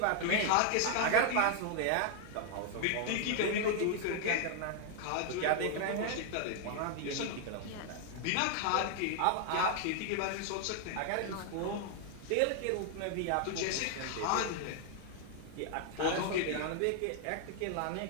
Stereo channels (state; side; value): different; both; correlation 0.00